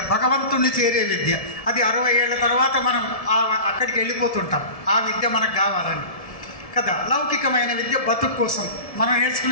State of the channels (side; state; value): right; late; 1.7 ms